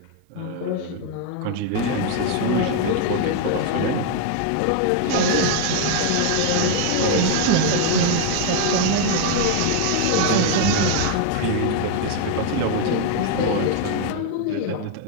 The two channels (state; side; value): different; both; correlation 0.01